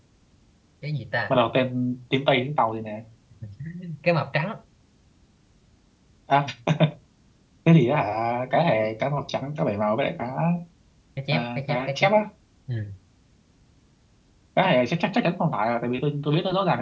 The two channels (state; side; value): identical; both; correlation 1.00